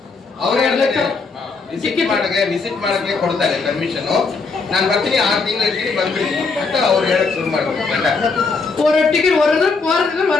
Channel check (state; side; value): quieter; right; 4.4 dB